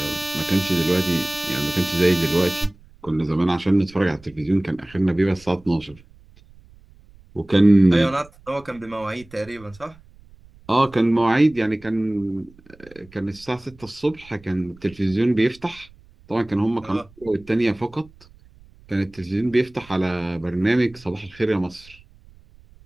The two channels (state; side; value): noise; right; rumble, 25 dB below the sound